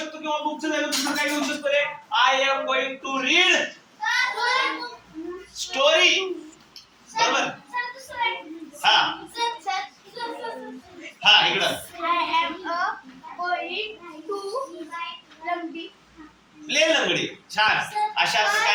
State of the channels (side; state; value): both; identical; correlation 1.00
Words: किंवा बुकचं जागी दुसरं काय घेऊ शकतो रे? I am going to read story. बरोबर. हा हा इकडं प्ले लंगडी. छान. अशा